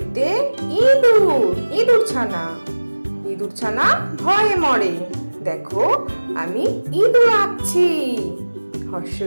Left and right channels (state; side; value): inverted; both; correlation -1.00